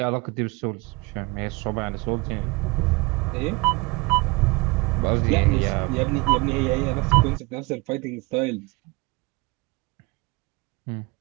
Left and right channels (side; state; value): left; quieter; 24.9 dB